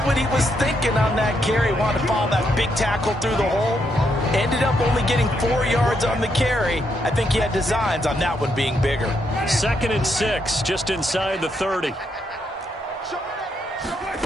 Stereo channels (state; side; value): normal; both; correlation 0.78